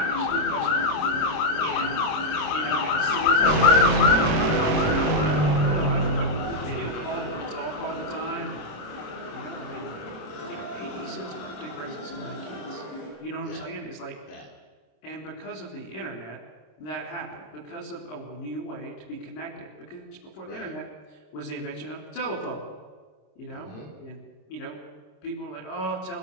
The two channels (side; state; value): right; late; 27 ms